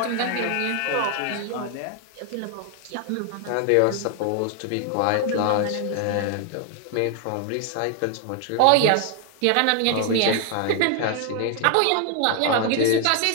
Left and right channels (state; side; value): different; both; correlation 0.00